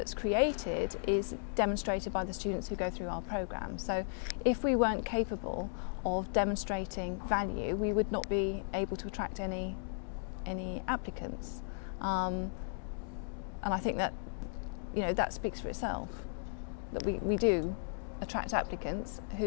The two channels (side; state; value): right; silent; digital silence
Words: created is demonstrated by the students who go through our program. So if we weren't capable of demonstrating value, we would not be able to attract any applicants, and I think that that speaks for itself, that we do attract applicants